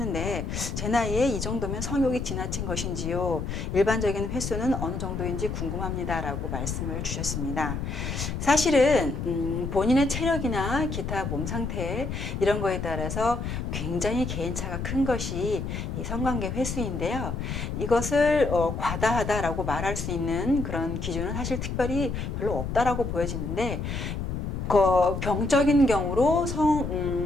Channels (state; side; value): noise; left; rumble, 4 dB below the sound